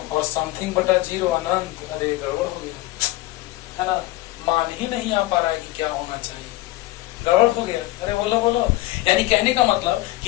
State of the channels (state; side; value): quieter; right; 18.1 dB